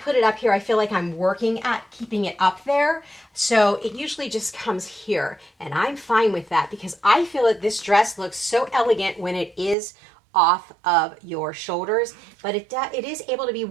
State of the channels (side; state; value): left; drops out; at 9.8 s